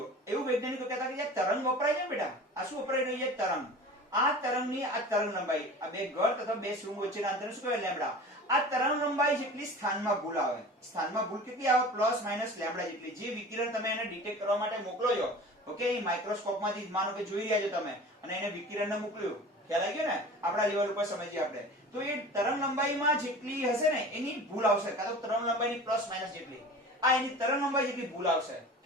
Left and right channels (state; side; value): normal; both; correlation 0.38